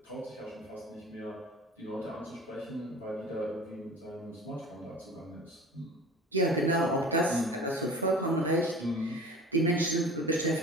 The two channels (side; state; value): both; normal; correlation 0.40